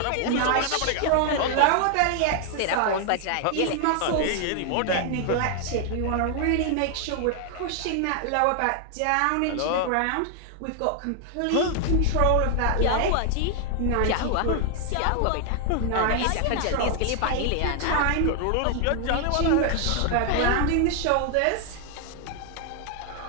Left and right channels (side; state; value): both; different; correlation 0.00